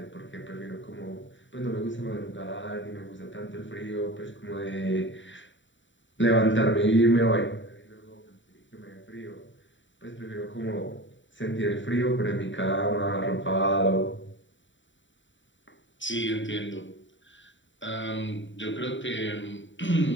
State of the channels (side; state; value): right; late; 0.54 ms